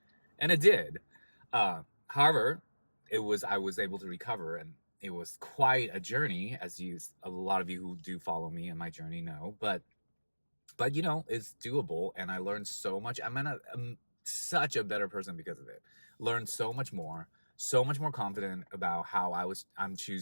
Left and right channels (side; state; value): both; inverted; correlation -1.00